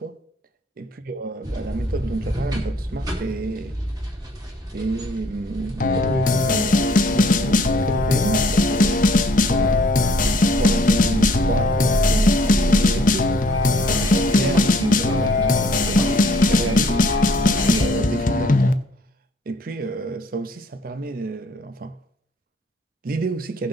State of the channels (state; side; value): normal; both; correlation 0.62